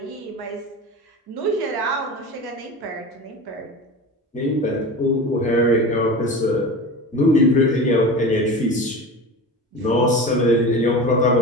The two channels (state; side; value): normal; both; correlation 0.31